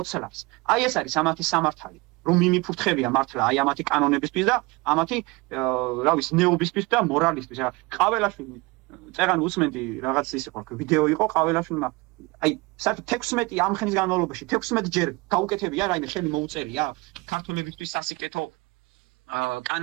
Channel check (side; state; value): left; quieter; 24.4 dB